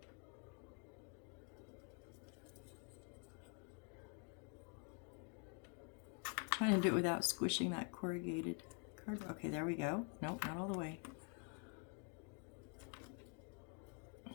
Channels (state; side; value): quieter; right; 38.5 dB